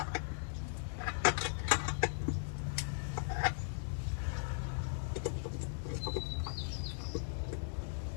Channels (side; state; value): right; silent; digital silence